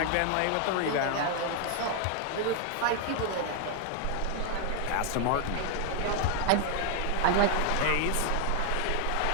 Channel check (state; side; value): different; both; correlation 0.00